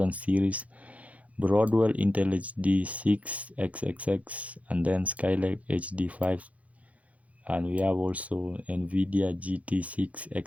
series, Broadwell Intel HD 6 XXX, and then Skylake HD 5. And we have also NVIDIA GT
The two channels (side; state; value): left; late; 0.067 ms